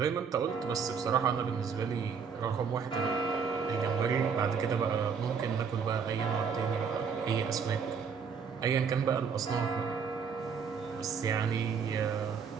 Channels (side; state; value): left; quieter; 6.2 dB